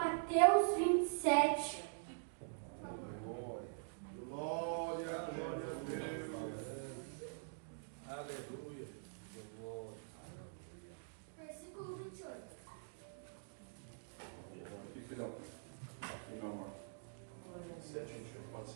27. Por favor. Glória a Deus. Aleluia. Versículo 28. Aqui, filhão. Aqui não, mano. Certinho, pode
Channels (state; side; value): silent; left; digital silence